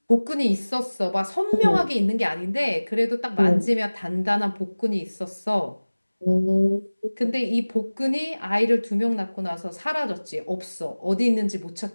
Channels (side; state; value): both; inverted; correlation -1.00